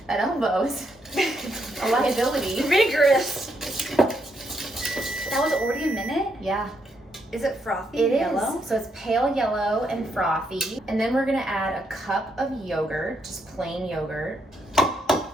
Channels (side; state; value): both; normal; correlation 0.77